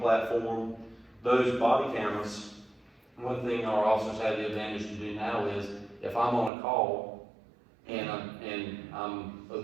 Those body cameras, one thing our officers have the advantage to do now is, if I'm on a call and I'm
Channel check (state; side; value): drops out; left; at 6.5 s